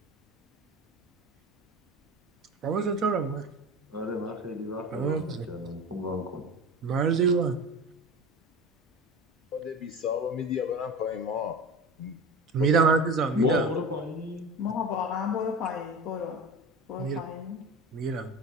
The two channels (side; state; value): both; normal; correlation 0.31